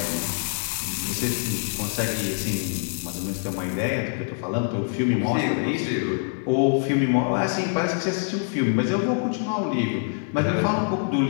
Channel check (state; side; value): silent; right; digital silence